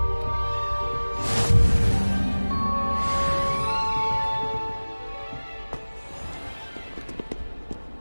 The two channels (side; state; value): both; inverted; correlation -1.00